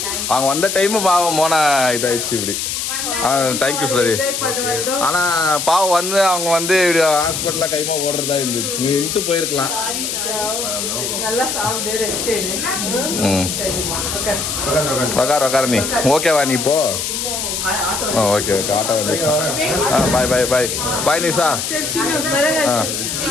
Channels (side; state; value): left; noise; hiss, 3 dB below the sound